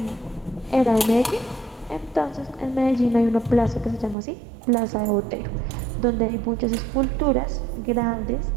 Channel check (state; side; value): drops out; left; at 4.2 s